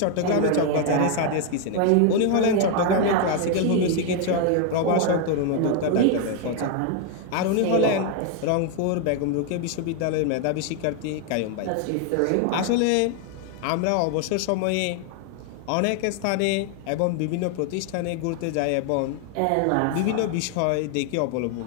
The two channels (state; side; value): different; both; correlation 0.01